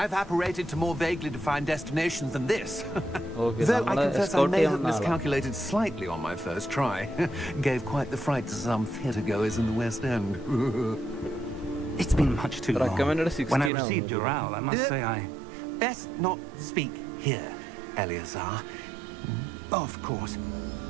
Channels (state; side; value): drops out; left; at 13.7 s